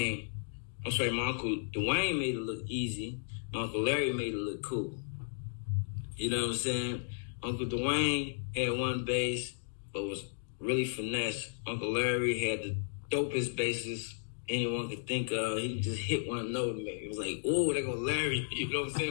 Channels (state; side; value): silent; right; digital silence